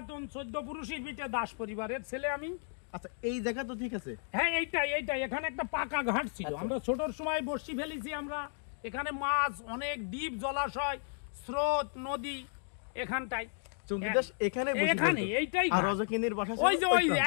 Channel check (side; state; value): right; silent; 55 dB below the other